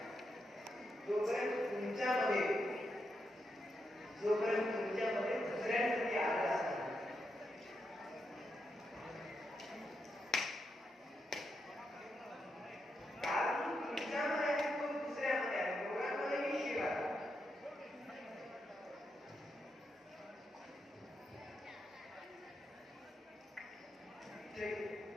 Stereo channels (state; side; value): normal; both; correlation 0.84